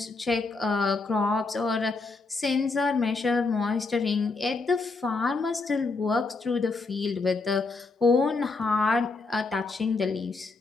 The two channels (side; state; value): right; quieter; 3.9 dB